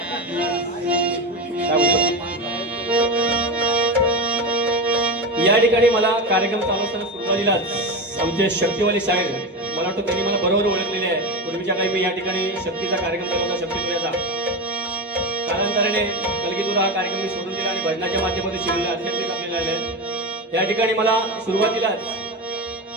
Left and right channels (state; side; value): normal; both; correlation 0.19